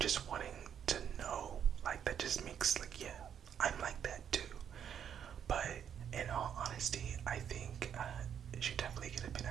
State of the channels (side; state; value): left; quieter; 8.6 dB